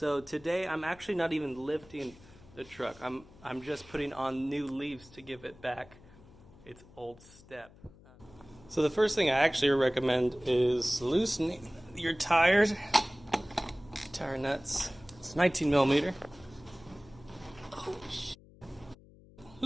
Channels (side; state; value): left; noise; hum, 23 dB below the sound